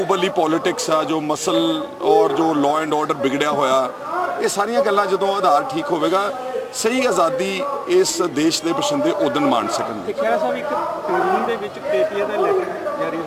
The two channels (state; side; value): identical; both; correlation 1.00